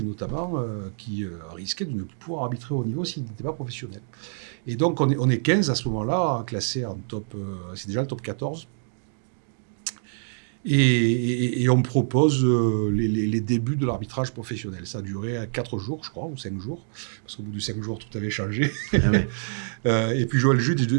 notamment, qui risquait de ne plus pouvoir arbitrer au niveau s'il n'était pas professionnel. Et donc, on est 15 à ce moment-là, classés en top... c'est déjà le top 14. Et on propose les débuts de l'arbitrage professionnel. Ça a duré 4 jours, je crois, ou 5 jours, parce qu'au bout de 5 jours, tout avait changé. Ah ouais. Et puis, Joël Juge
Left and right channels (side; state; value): left; silent; digital silence